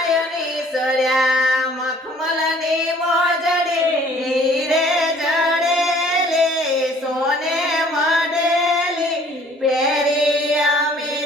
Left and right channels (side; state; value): both; normal; correlation 0.56